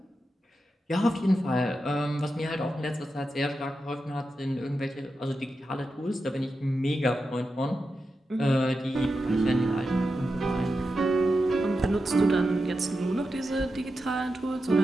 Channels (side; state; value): both; normal; correlation 0.89